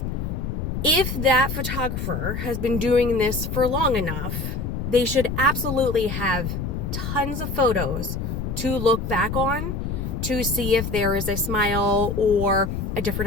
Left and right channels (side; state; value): left; noise; rumble, 3 dB below the sound